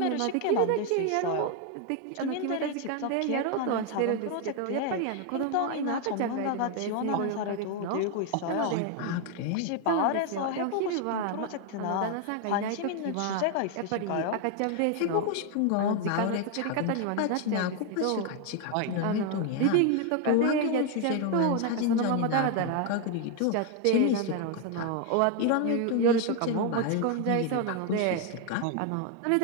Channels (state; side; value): different; both; correlation 0.01